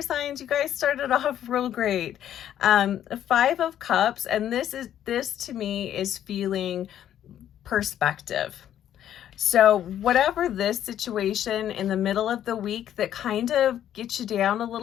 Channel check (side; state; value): right; quieter; 10.8 dB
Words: signs, you guys started off real great. 5 of Cups, and this to me is feeling perspective. So whatever this situation in the middle of the week that kind of gets you down a